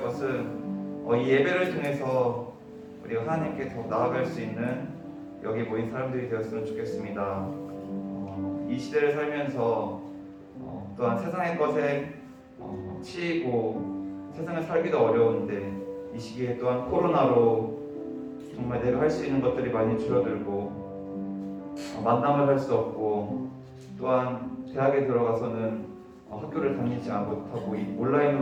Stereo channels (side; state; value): both; identical; correlation 1.00